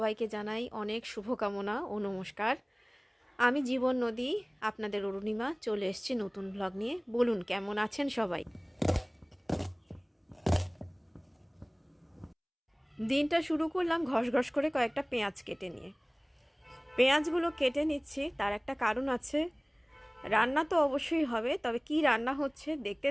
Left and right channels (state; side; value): identical; both; correlation 1.00